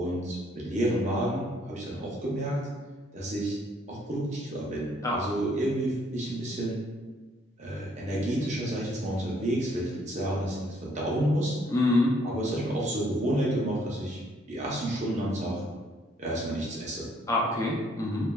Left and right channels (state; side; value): normal; both; correlation 0.66